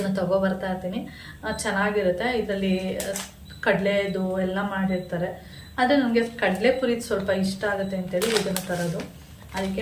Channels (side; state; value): both; identical; correlation 1.00